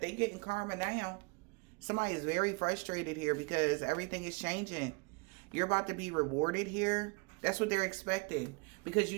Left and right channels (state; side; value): quieter; left; 30.9 dB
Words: they getting karma now. Somebody is very frustrated here because everything is changing. You're about to be rewarded here. That's what they're expecting. Because you